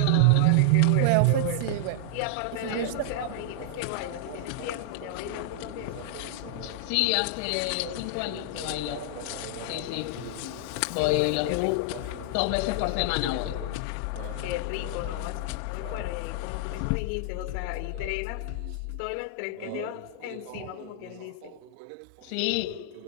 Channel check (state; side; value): different; both; correlation -0.01